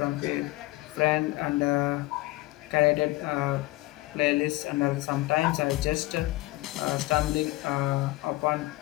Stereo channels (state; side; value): quieter; right; 19.3 dB